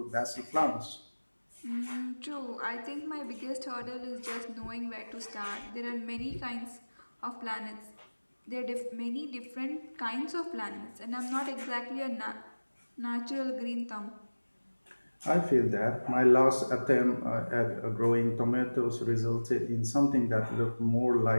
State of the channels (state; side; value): inverted; both; correlation -1.00